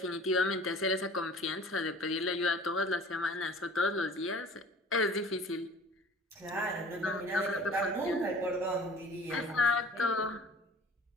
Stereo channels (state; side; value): normal; both; correlation 0.46